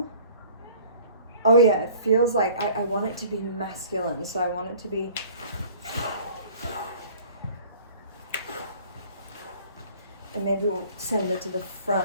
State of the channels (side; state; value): both; inverted; correlation -0.49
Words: Oh yeah, it feels like I want it to be masculine. So I want it to be, and maybe we'll send it to the